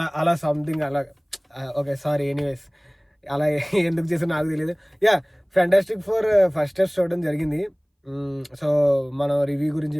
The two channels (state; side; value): identical; both; correlation 1.00